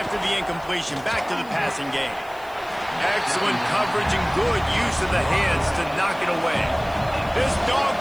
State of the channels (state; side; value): noise; left; hiss, 24 dB below the sound